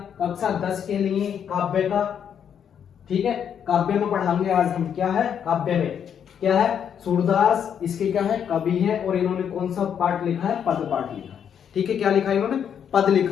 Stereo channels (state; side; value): quieter; right; 8.3 dB